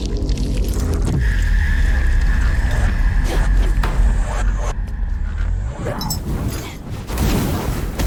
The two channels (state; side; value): identical; both; correlation 1.00